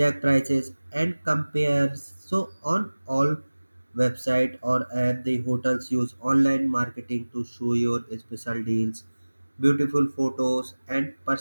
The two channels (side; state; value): both; inverted; correlation -1.00